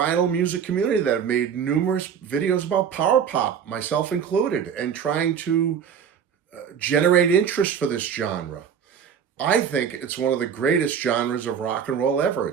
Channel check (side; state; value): left; quieter; 7.6 dB